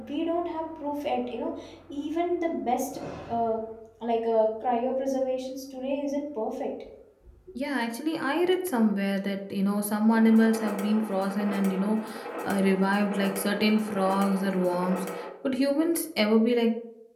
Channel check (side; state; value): both; identical; correlation 1.00